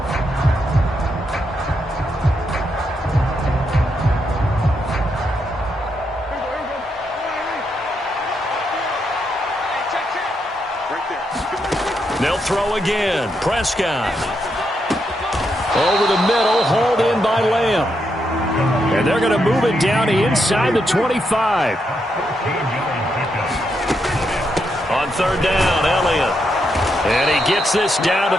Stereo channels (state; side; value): normal; both; correlation 0.81